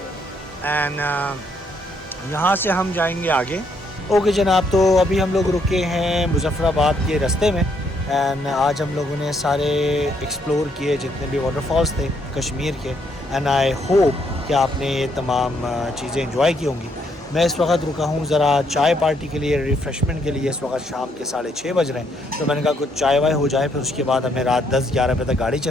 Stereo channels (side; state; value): both; normal; correlation 0.72